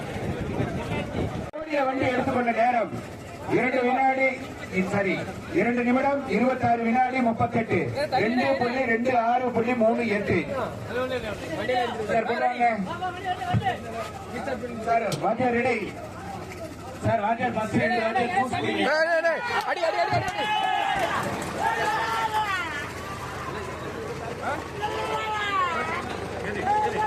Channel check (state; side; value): identical; both; correlation 1.00